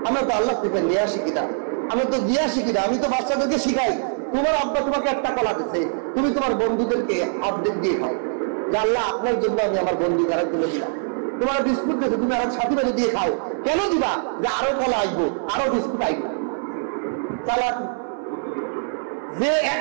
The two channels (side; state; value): left; silent; 63 dB below the other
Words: আমরা তো আল্লাহ থেকে নিয়ে আসি কিনা, আমরা তো দিয়ে আসি কিনা। আমি তো বাচ্চাদেরকে শিখাই, তোমার আব্বা তোমাকে একটা কলা দিচ্ছে, তুমি তোমার বন্ধুদেরকে অর্ধেক দিয়ে খাও, যে আল্লাহ আপনার জন্য আমি আমার বন্ধু কারা তুলে দিলাম। তোমার বিস্কুট দিচ্ছে, তুমি আর সাথী বাজে দিয়ে খাও, কেন দিবা? যে আরো কলা আসবো, আরো বিস্কুট আসবো। চালাকি। যে